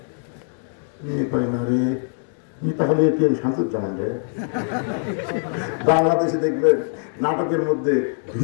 না রে তাহলে এটিএম শামসুজ্জামান রে। বাংলাদেশে দেখবেন নাটকের মধ্যে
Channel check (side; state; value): right; silent; 64 dB below the other